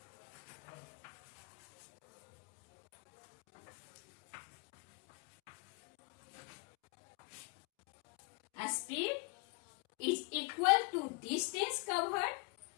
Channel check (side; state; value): right; quieter; 30.9 dB